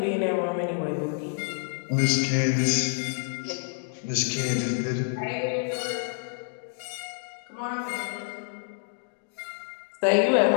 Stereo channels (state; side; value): silent; right; digital silence